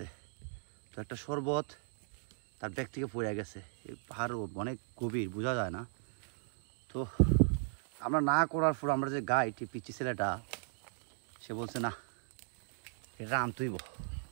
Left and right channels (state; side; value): silent; left; digital silence